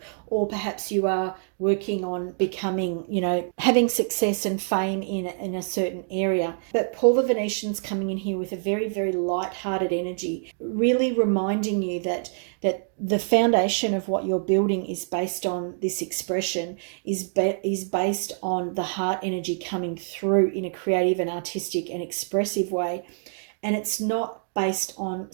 or perhaps you are working on becoming, you know, having success and fame in a certain area. But Paul the Venetian's coming in here with a very, very light-hearted energy, really reminding you that the foundation of what you're building is based on this expression, is based on the heart energy coming through in a creative and artistic and expressive way. And it's not based on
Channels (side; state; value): left; silent; digital silence